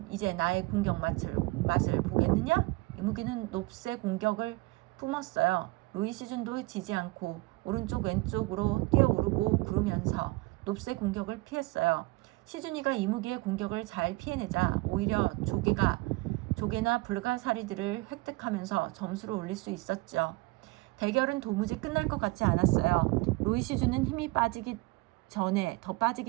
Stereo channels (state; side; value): quieter; left; 22.7 dB